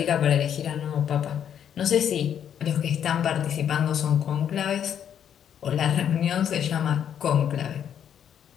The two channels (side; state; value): right; quieter; 9.1 dB